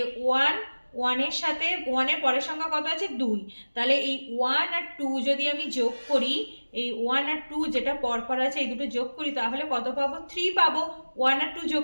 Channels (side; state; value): both; inverted; correlation -1.00